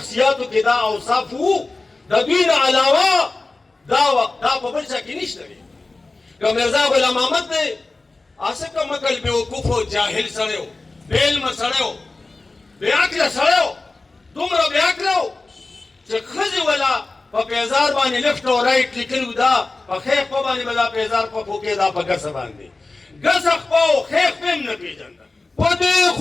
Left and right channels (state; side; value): quieter; right; 3.4 dB